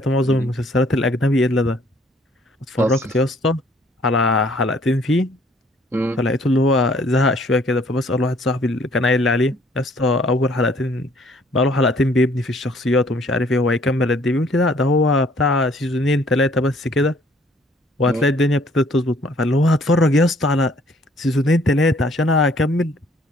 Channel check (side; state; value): both; normal; correlation 0.60